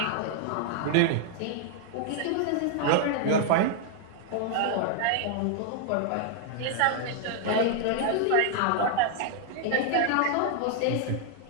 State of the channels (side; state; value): both; different; correlation 0.00